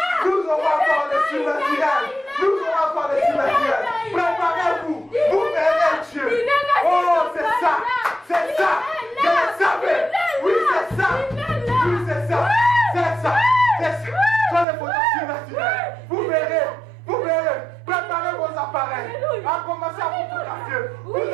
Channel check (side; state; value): left; drops out; at 14.7 s